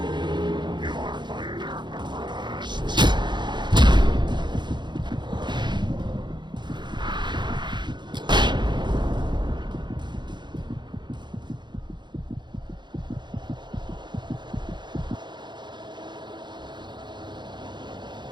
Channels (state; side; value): late; left; 0.22 ms